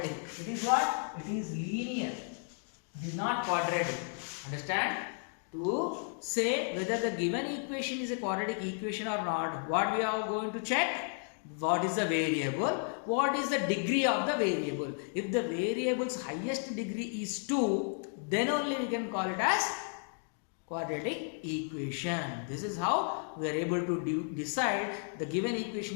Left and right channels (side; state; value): right; silent; 55 dB below the other